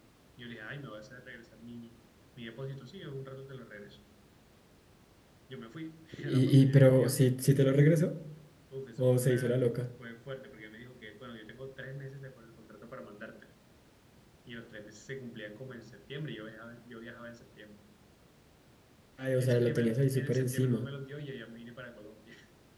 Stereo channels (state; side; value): identical; both; correlation 1.00